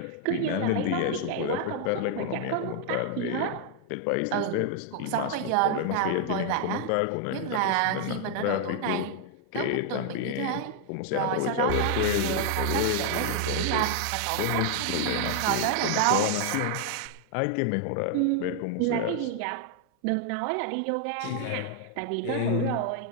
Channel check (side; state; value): both; different; correlation 0.00